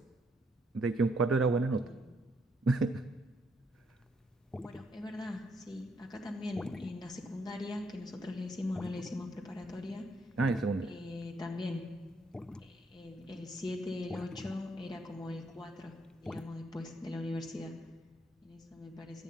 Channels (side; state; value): both; normal; correlation 0.73